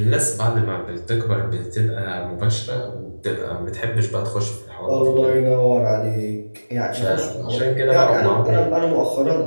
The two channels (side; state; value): both; inverted; correlation -1.00